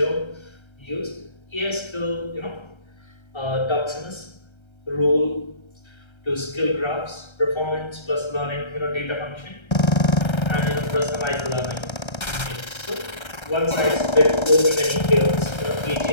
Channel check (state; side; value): late; right; 1.3 ms